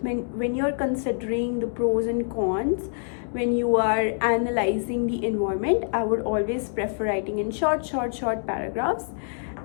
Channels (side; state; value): right; silent; digital silence